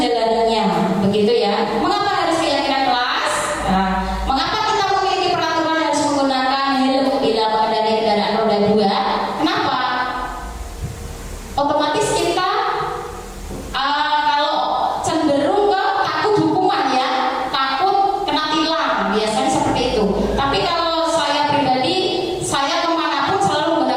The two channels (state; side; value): identical; both; correlation 1.00